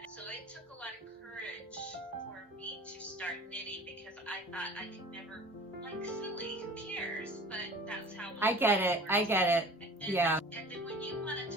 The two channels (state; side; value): normal; both; correlation 0.43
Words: so it took a lot of courage for me to start knitting because I thought I could never, like, silly, who cares? But that's how I get it. I get it. Yeah. And then when you wanted